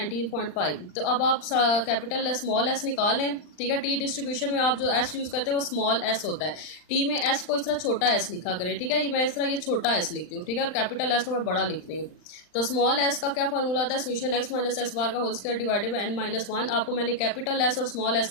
तो अब आप कैपिटल स्मॉल एस निकाल लें, ठीक है। टी डिस्ट्रीब्यूशन में आप जो एस यूज करते हैं वो स्मॉल एस होता है। टी में एस को इस तरह छोटा एस लिखा करें, ठीक है। ये मैं इस तरह ये छोटा एस लिखती हूँ, ठीक है, और कैपिटल एस को मैं बड़ा लिखती हूँ। तो स्मॉल एस का क्या फॉर्मूला होता है, summation X minus X bar का whole square divided by N -1। आपको मैंने कैपिटल एस और स्मॉल एस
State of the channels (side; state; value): right; late; 39 ms